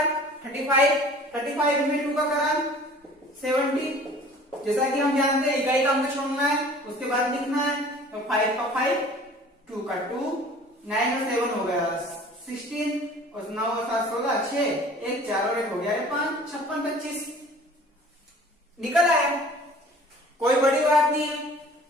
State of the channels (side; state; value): both; normal; correlation 0.47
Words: 35 में 2 का करा 70। जैसा कि हम जानते हैं इकाई का अंक छोड़ना है, उसके बाद लिखना है, तो 5 का 5, 2 का 2, 9 और 7 हो गया 16 और 9 और 7 16, 6 1 4 और 1 हो गया 5, 56 25 निकल आया। कोई बड़ी बात नहीं है।